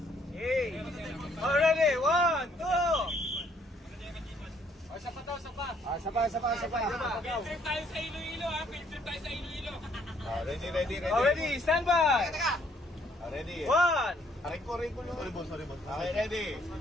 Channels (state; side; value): normal; both; correlation 0.66